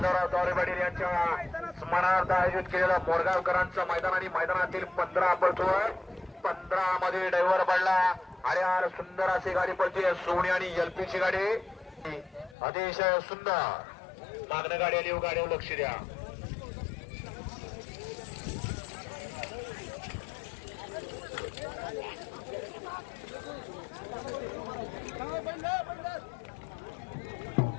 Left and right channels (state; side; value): drops out; right; at 12.6 s